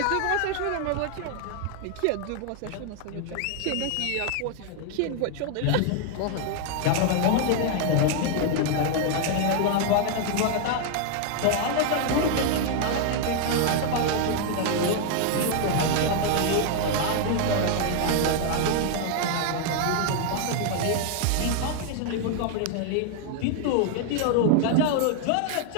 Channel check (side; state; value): both; different; correlation 0.00